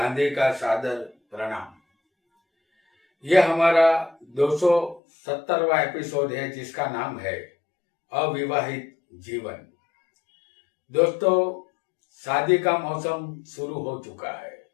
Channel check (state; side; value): drops out; right; at 5.0 s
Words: का सादर प्रणाम। यह हमारा 270वां एपिसोड है जिसका नाम है अविवाहित जीवन। दोस्तों, शादी का मौसम शुरू हो चुका है।